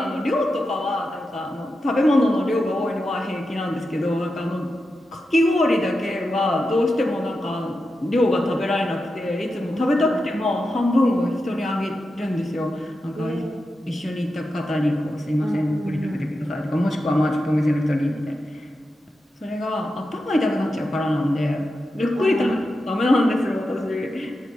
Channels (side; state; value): both; normal; correlation 0.89